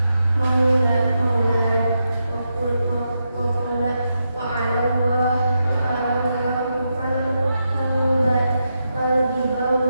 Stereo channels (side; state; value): both; inverted; correlation -0.85